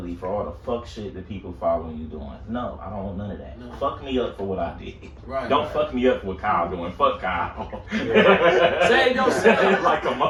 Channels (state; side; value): identical; both; correlation 1.00